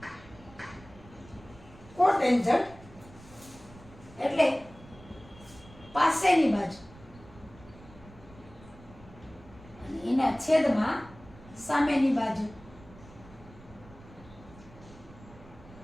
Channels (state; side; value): noise; right; rumble, 21 dB below the sound